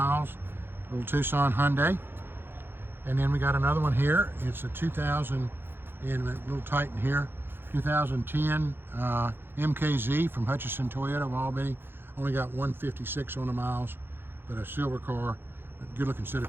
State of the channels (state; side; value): late; left; 0.10 ms